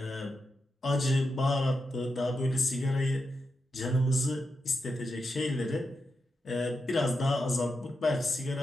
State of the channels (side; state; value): both; normal; correlation 0.87